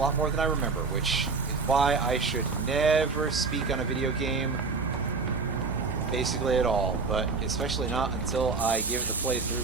more than I remember, which is why I should never speak on a video game basically at all, but especially not until I give it the playthrough.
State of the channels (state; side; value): quieter; left; 4.4 dB